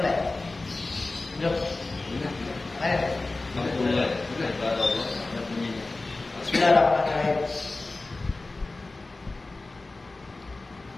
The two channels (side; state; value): right; quieter; 3.2 dB